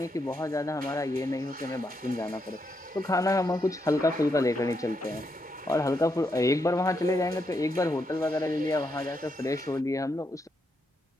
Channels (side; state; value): both; normal; correlation 0.81